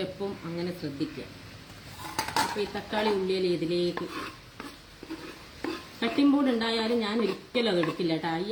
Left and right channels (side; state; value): both; identical; correlation 1.00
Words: എപ്പം അങ്ങനെ ശ്രദ്ധിക്കുക. അപ്പോൾ ഈ തക്കാളി ഉള്ളിയിൽ ഇതിലേക്ക് കട്ടിംഗ് ബോർഡ് ഉണ്ടായാലും ഞാൻ ഒരിക്കലും അത് എടുക്കില്ല കേട്ടോ. ഈ